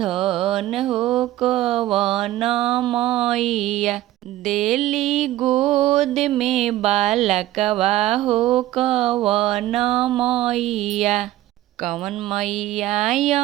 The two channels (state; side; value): quieter; left; 15.1 dB